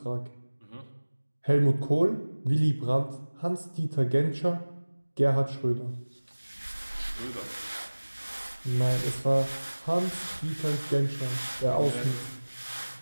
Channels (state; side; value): inverted; both; correlation -1.00